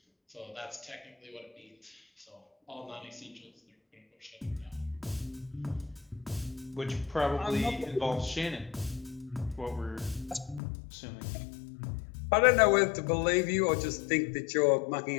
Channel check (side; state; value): right; drops out; at 10.6 s